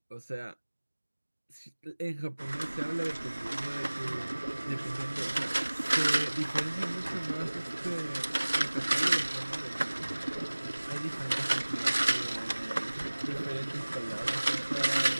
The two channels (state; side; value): inverted; both; correlation -1.00